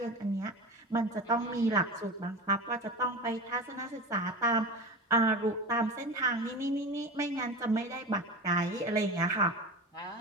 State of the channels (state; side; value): normal; both; correlation 0.28